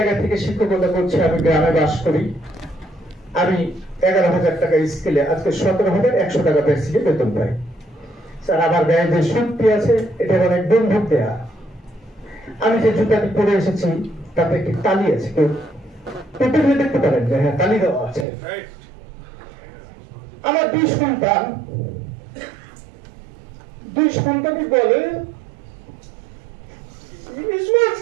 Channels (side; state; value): left; drops out; at 18.2 s